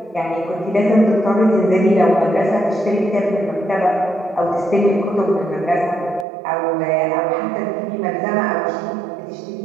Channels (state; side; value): drops out; left; at 6.2 s